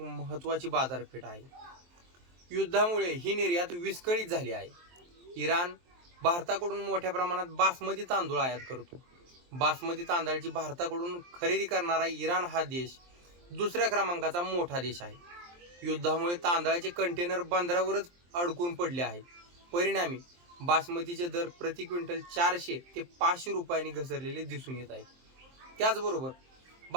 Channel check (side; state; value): left; late; 23 ms